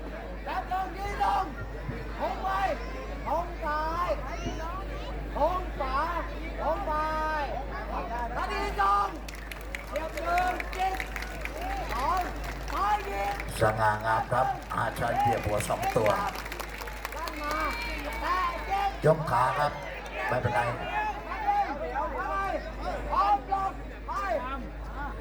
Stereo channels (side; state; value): both; identical; correlation 1.00